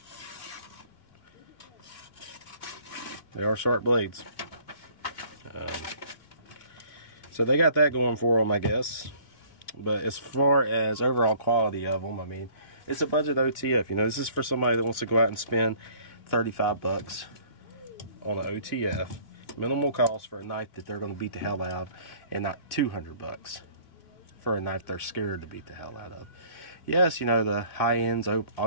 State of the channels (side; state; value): right; late; 2.3 ms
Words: They are sharp blades. So they got that going for them, I guess. But as far as overall quality of them, I mean, it's a budget OTF. You know, this is for somebody that wants to go out and spend 35 bucks on an OTF. Minimal cost for a knife that they're going to beat the hell out of, and not 200 bucks for a knife they're scared to beat the hell out of. Yes, you know, the high ends